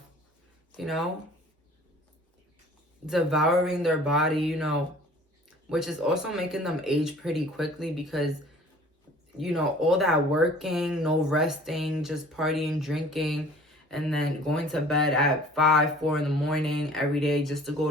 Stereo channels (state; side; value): normal; both; correlation 0.49